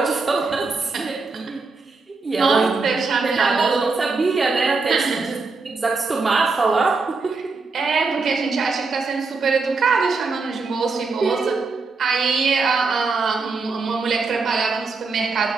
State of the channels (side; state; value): left; quieter; 4.1 dB